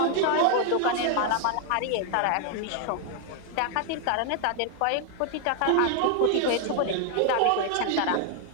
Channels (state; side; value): different; both; correlation 0.00